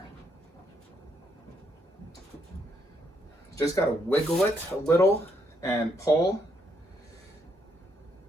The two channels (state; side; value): normal; both; correlation 0.75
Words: Just gotta wiggle it a little and pull